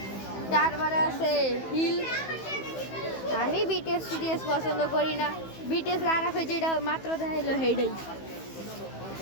তারপরে আছে হিল। আমি বিটিএস পছন্দ করি না, বিটিএস আরাফে যেটা মাত্র দেখাইলো সেইটাই।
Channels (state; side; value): late; right; 15 ms